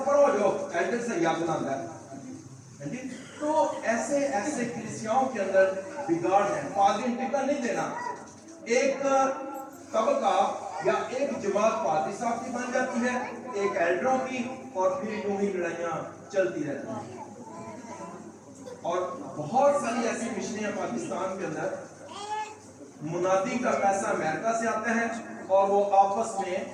پڑھو جو ایلڈر سے یاد نہ ہے. تو ایسے کلیسیاؤں کے اندر بگاڑ ہے. پادری ٹکٹ نہیں دینا، ایک طبقہ یا ایک جماعت پادری صاحب کی بن جاتی ہے، ایک ایلڈروں کی، اور پھر یوں ہی لڑائیاں چلتی رہتی ہیں. اور بہت ساری ایسی مشنیں پاکستان کے اندر मुनादी का पैसा अमेरिका से आता है और वो आपस में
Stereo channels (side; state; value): both; identical; correlation 1.00